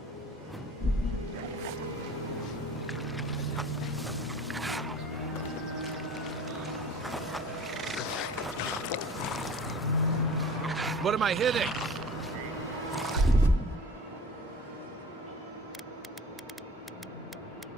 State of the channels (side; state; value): both; normal; correlation 0.41